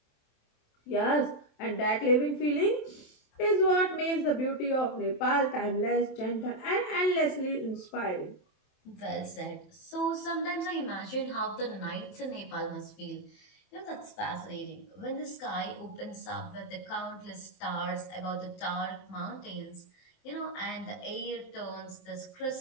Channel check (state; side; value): late; right; 27 ms